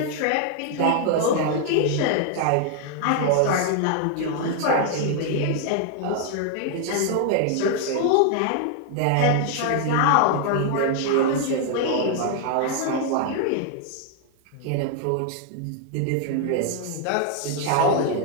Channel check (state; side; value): different; both; correlation 0.00